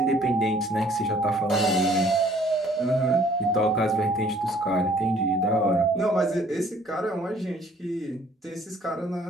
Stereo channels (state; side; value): normal; both; correlation 0.58